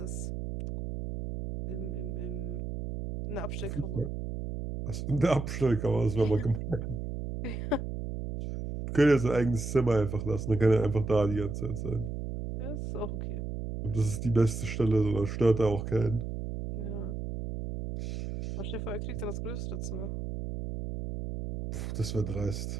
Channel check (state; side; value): noise; right; hum, 5 dB below the sound